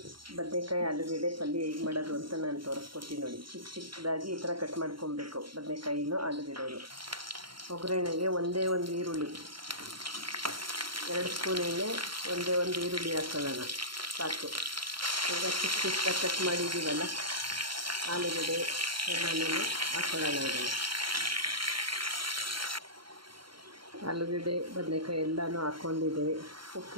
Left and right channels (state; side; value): late; left; 0.73 ms